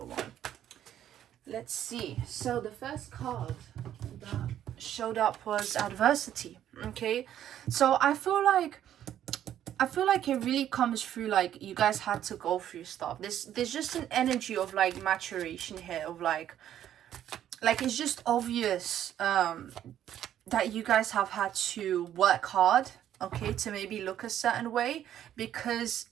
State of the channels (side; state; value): left; quieter; 11.0 dB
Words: 1. Let's see. So the first card that showed up was adversity. Okay, so I feel like it really comes through like you guys had to go through stuff. There's just an energy of like maturation here, of like it's just obvious that you guys have had to work hard, okay, to maybe look a certain way, because